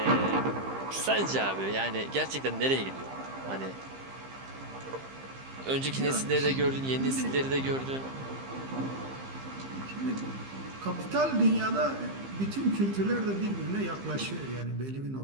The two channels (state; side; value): late; left; 15 ms